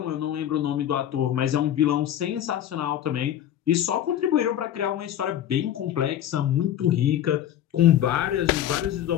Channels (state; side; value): quieter; right; 11.1 dB